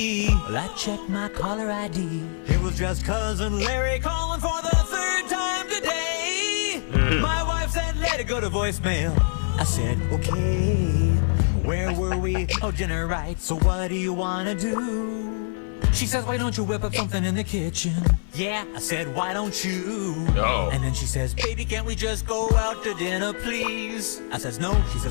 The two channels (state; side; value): silent; right; digital silence